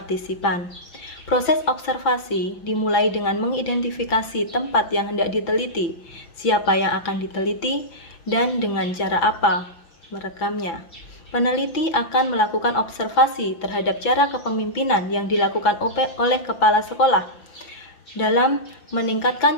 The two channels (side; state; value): right; late; 5.9 ms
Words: Proses observasi dimulai dengan mengidentifikasi tempat yang hendak diteliti, siapa yang akan diteliti, dan dengan cara apa merekamnya. Peneliti akan melakukan observasi terhadap cara kepemimpinan yang dilakukan oleh kepala sekolah dalam